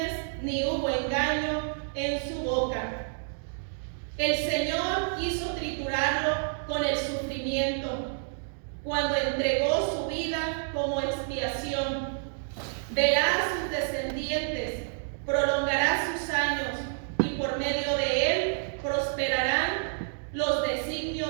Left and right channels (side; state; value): left; silent; digital silence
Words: ni hubo engaño en su boca. El Señor quiso triturarlo con el sufrimiento, cuando entregó su vida como expiación. Verá a sus descendientes, prolongará sus años, y por medio de él prosperarán los